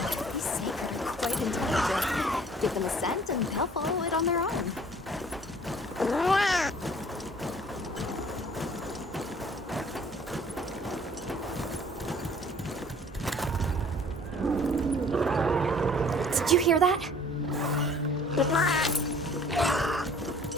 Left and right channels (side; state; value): both; normal; correlation 0.53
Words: These sacred are quite intelligent. Give them a scent and they'll follow it on their own. Did you hear that?